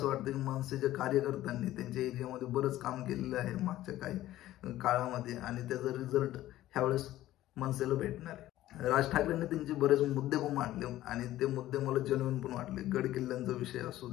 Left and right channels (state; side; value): quieter; right; 14.7 dB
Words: वाटतं की मनसेच्या कार्यकर्त्यांनी त्यांच्या एरियामध्ये बरंच काम केलेलं आहे मागच्या काही काळामध्ये आणि त्याचा रिझल्ट ह्यावेळेस मनसेला भेटणार आहे। राज ठाकरेंनी त्यांचे बरेच मुद्दे पण मांडले आणि ते मुद्दे मला जेन्युइन पण वाटले। गड किल्ल्यांचा विषय असू